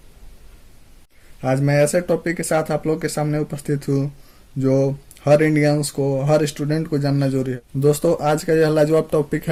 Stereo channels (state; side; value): identical; both; correlation 1.00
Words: आज मैं ऐसे topic के साथ आप लोग के सामने उपस्थित हूँ जो हर इंडियंस को, हर स्टूडेंट को जानना जरूरी है। दोस्तों, आज का यह लाजवाब टॉपिक